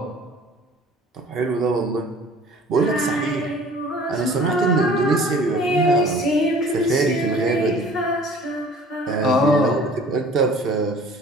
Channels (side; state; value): both; normal; correlation 0.49